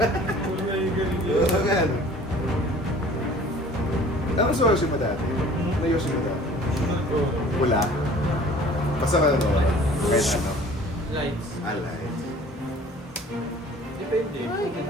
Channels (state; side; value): normal; both; correlation 0.49